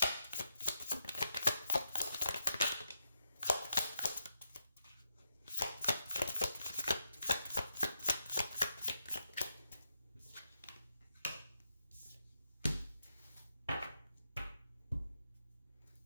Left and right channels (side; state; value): both; inverted; correlation -0.82